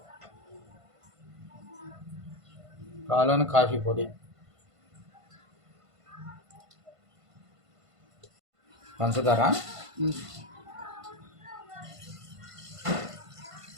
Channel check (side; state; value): left; late; 1.5 ms